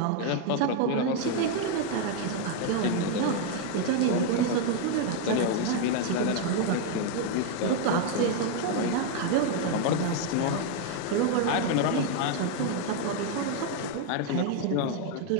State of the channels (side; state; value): both; different; correlation 0.01